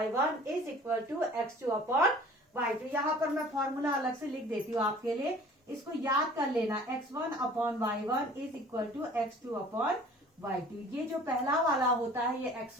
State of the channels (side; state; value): both; normal; correlation 0.48